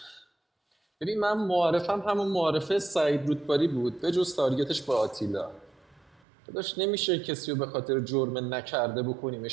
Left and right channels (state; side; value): drops out; left; at 6.2 s